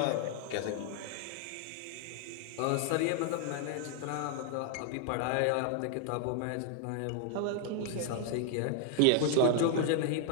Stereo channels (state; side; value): different; both; correlation 0.00